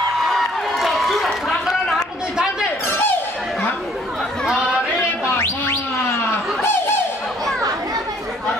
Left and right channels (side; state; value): both; normal; correlation 0.61